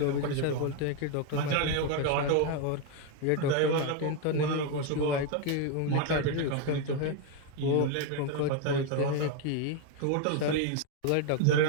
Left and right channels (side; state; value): both; different; correlation 0.01